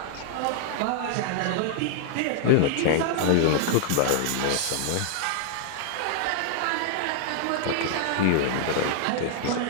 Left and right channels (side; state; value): both; different; correlation -0.01